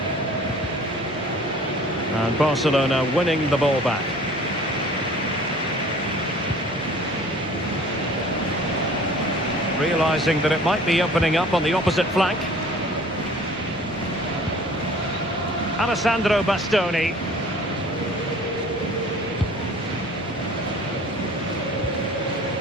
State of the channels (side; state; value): both; normal; correlation 0.48